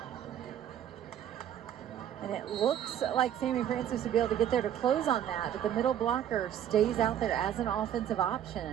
And it looks like Sammy Francis would be able to get there to close on that, but the middle blocker stays out there as an offensive option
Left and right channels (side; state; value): left; quieter; 10.3 dB